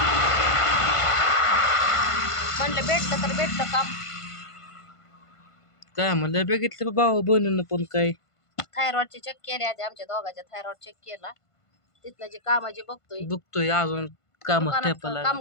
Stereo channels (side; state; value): right; late; 1.5 ms